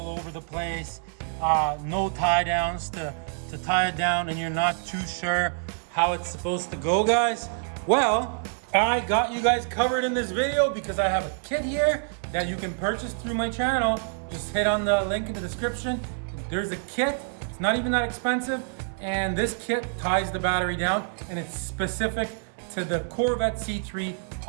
over the place? No tie downs to tie it down, and you're not too sure how it's supposed to go, guys? Well, I got you guys covered in this video because I have a kit here that you can purchase through my channel. Just hit on the link in the description. There's a kit, it's not even that expensive, and this kit ties the battery down, and it's specific to the Corvette C3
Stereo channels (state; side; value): silent; left; 60 dB below the other